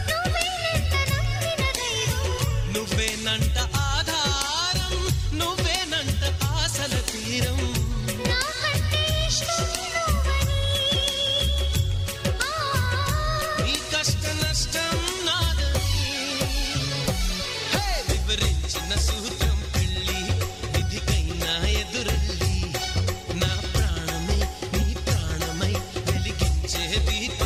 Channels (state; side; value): identical; both; correlation 1.00